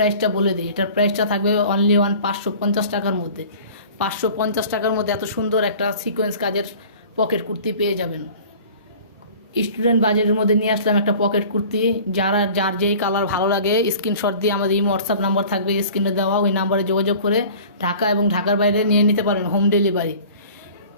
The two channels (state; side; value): inverted; both; correlation -0.45